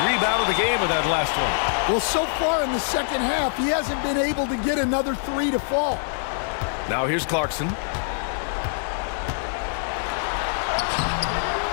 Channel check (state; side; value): silent; right; digital silence